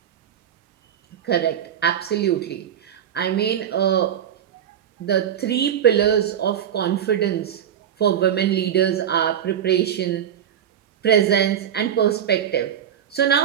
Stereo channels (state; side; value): quieter; left; 9.5 dB